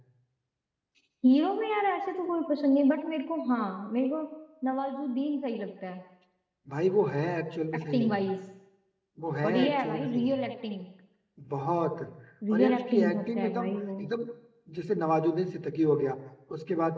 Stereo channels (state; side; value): identical; both; correlation 1.00